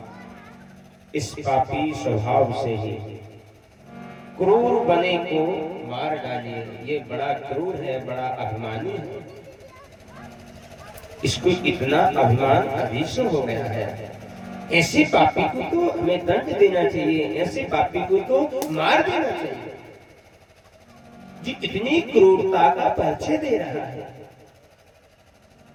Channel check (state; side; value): identical; both; correlation 1.00